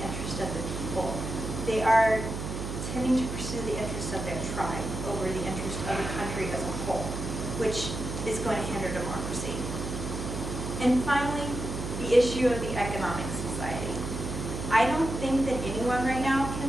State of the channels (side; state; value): right; noise; hum, 5 dB below the sound